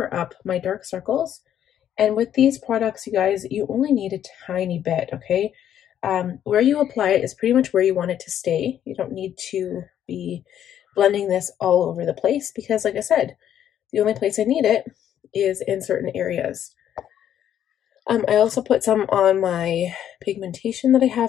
up my dark circles. And with these products, you guys, you only need a tiny bit, okay? Where you apply it is pretty much where you want it to stay. You don't need to be blending this all over the place because, like I said, the only place I need it is in certain areas. I also put some on my pigmentation that I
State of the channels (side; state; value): right; quieter; 10.3 dB